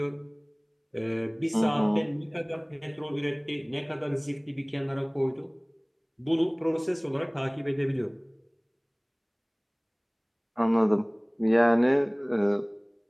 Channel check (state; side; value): identical; both; correlation 1.00